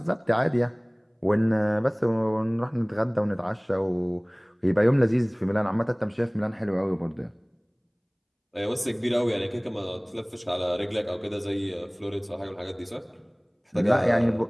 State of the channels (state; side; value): identical; both; correlation 1.00